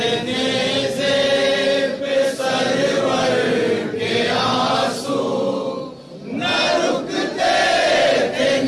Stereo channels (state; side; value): identical; both; correlation 1.00